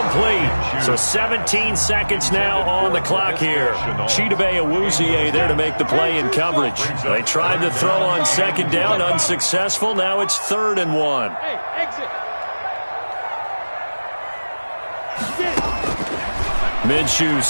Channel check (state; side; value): inverted; both; correlation -1.00